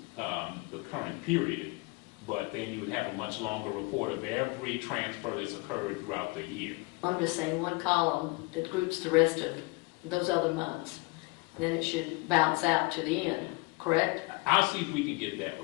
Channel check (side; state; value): right; quieter; 25.7 dB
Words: the current period, but then you would have a much longer report of every transfer that's occurred throughout the year. I'm just saying one column that groups the rest of those other months. Then it should bounce out to the end, correct? I'll see if we can get that